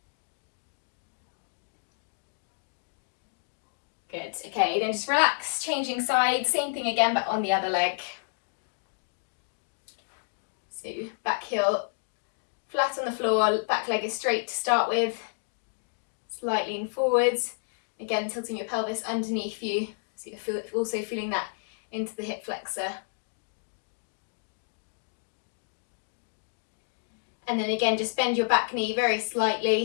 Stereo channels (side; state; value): right; silent; digital silence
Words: Good, okay, then just relax, changing sides, same thing again but on the other leg. So back heel flat on the floor, back leg is straight to start with. Slight lean forwards, again tilting your pelvis underneath you, so you're also feeling that into the hip flexor. And then again, just bend your back knee very